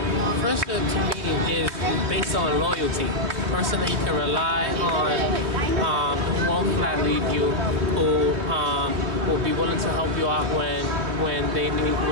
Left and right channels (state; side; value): late; left; 3.2 ms